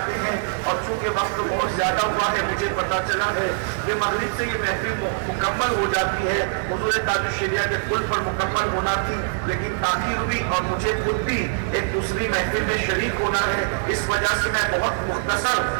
ہیں، اور چونکہ وقت بہت زیادہ ہوا ہے، مجھے پتا چلا ہے کہ مغرب سے یہ محفل مکمل ہو جاتی ہے، حضور تاج الشریعہ کے کل پر مکمل ہونا تھی، لیکن تاخیر ہوئی، اور مجھے خود بھی ایک دوسری محفل میں شریک ہونا ہے، اس وجہ سے میں بہت مختصر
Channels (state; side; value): silent; left; 59 dB below the other